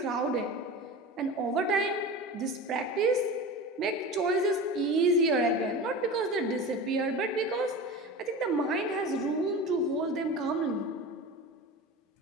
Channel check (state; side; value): normal; both; correlation 0.31